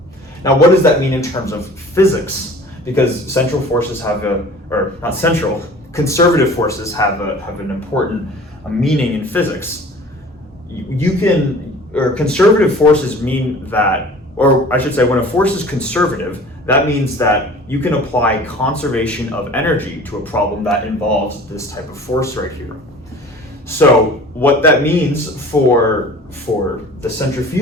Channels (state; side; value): normal; both; correlation 0.45